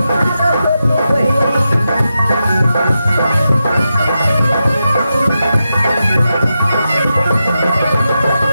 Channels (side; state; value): both; inverted; correlation -0.88